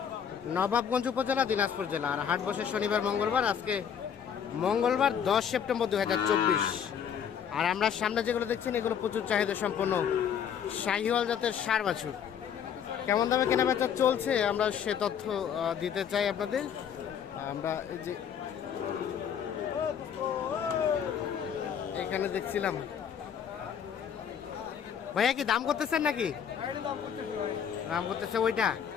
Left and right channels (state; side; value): quieter; right; 8.1 dB